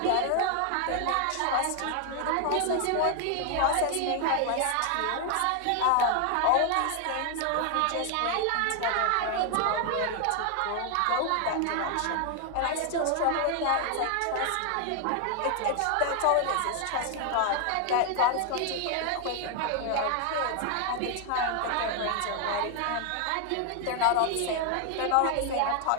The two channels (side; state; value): both; different; correlation 0.00